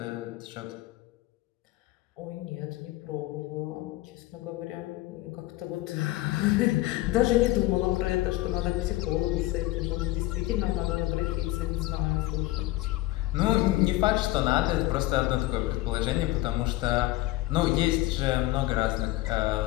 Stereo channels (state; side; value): quieter; right; 17.1 dB